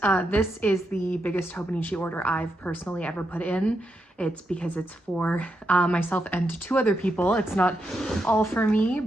this is the biggest Hobonichi order I've personally ever put in. It's because it's for myself and two other people. It's not all for me,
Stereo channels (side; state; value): both; normal; correlation 0.83